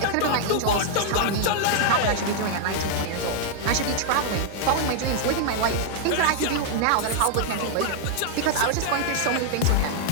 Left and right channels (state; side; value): different; both; correlation 0.00